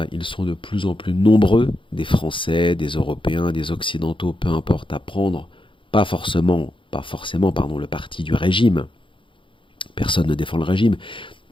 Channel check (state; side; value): late; right; 0.25 ms